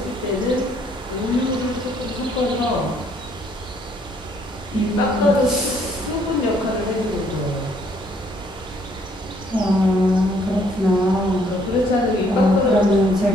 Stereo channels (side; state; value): both; normal; correlation 0.66